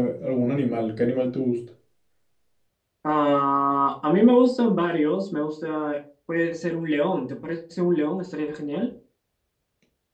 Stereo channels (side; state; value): both; identical; correlation 1.00